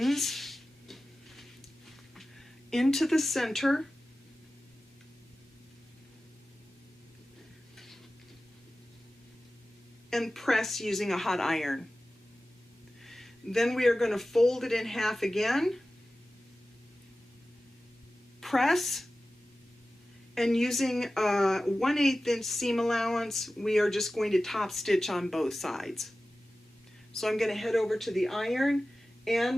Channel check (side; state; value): both; normal; correlation 0.95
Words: into the center and press using a hot iron. Then we are going to fold it in half again, press, and using a 1/8 inch seam allowance, we are just going to top stitch on both sides. So I'm going to head over to the iron